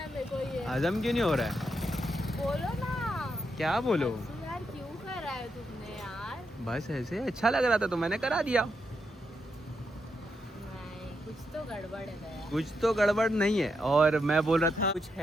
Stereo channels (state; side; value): normal; both; correlation 0.82